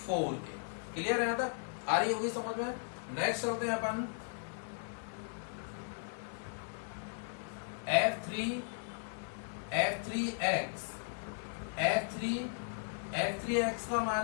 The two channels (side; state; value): right; silent; 53 dB below the other